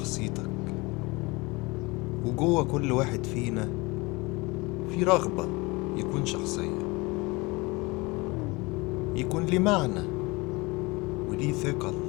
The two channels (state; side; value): quieter; right; 24.6 dB